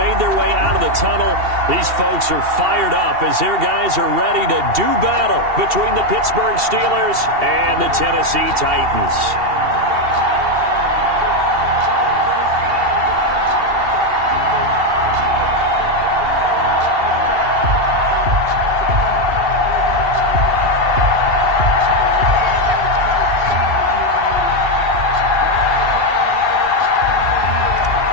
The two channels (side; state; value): left; late; 2.7 ms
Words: their way out of the tunnel. These folks are fired up as their guys are ready to do battle between the Pittsburgh Steelers and the Tennessee Titans.